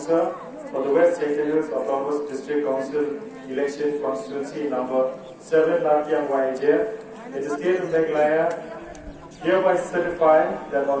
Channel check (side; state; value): both; identical; correlation 1.00